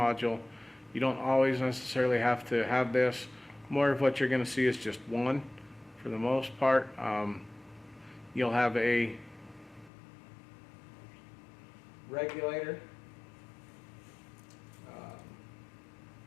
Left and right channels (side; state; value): right; drops out; at 9.9 s